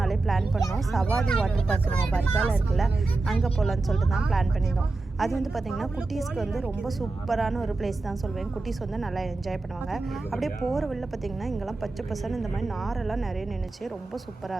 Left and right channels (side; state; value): left; quieter; 3.4 dB